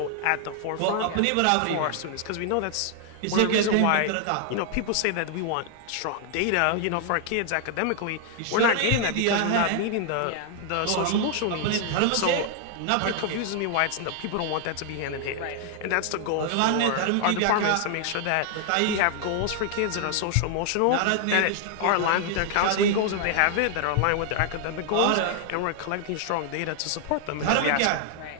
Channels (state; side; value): different; both; correlation 0.00